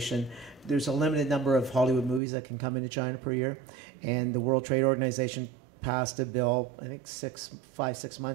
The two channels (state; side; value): drops out; left; at 2.2 s